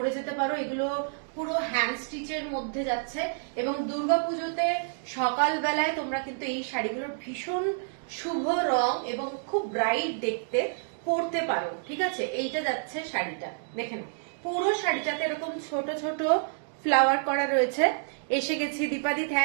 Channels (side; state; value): left; silent; digital silence